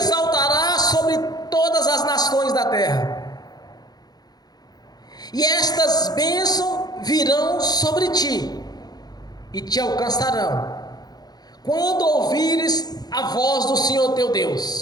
sobre todas as nações da terra, e estas bênçãos virão sobre ti e te alcançarão, quando ouvires a voz do Senhor teu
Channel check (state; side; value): late; right; 0.19 ms